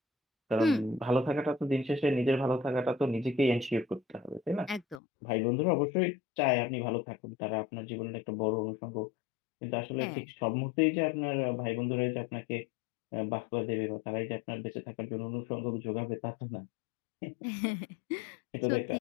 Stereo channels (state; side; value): drops out; right; at 5.0 s